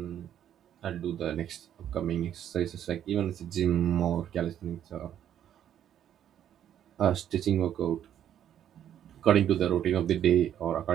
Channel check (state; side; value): quieter; left; 10.3 dB